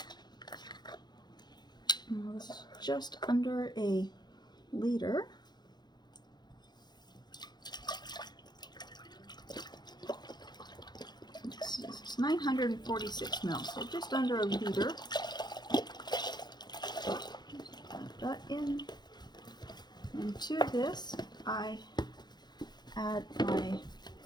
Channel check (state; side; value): late; right; 0.21 ms